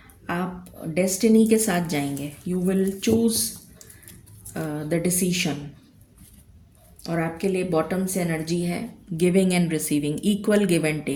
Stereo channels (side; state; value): both; identical; correlation 1.00